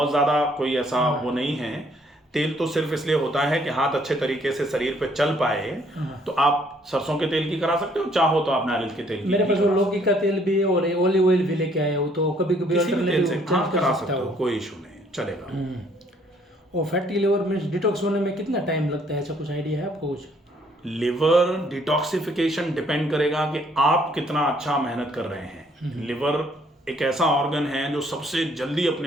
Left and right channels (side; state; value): both; normal; correlation 0.64